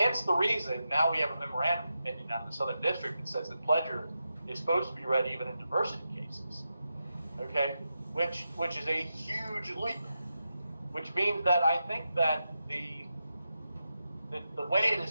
the reason now we have a memorandum opinion out of the Southern District that says that pledger is supposed to be read even in diversity cases. Okay? Which is a huge leap. Which means that I think that the way it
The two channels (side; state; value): both; inverted; correlation -0.89